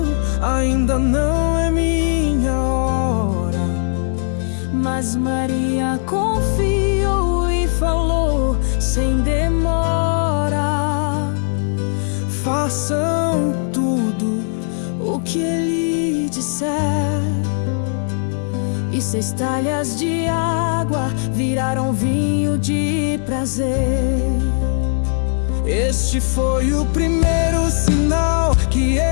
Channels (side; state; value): right; silent; 66 dB below the other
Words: ainda não é minha hora. mas Maria confiou e falou sem demora: Façam tudo o que ele disser. E 6 talhas de água viraram vinho de prazer. Este foi o primeiro sinal que